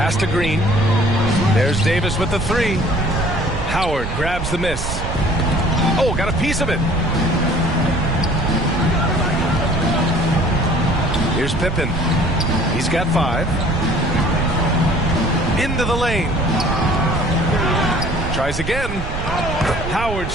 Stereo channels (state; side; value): noise; right; rumble, 5 dB below the sound